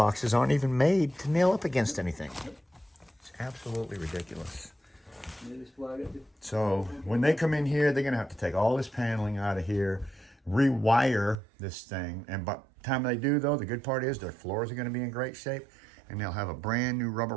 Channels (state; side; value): drops out; left; at 11.4 s